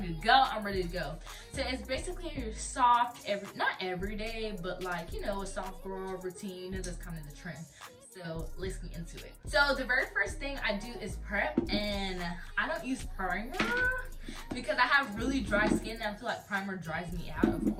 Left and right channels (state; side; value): identical; both; correlation 1.00